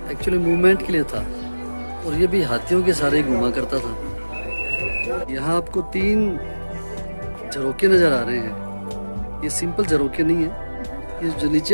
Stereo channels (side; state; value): both; inverted; correlation -1.00